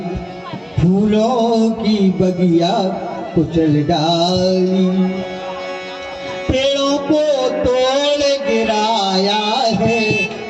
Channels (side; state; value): both; identical; correlation 1.00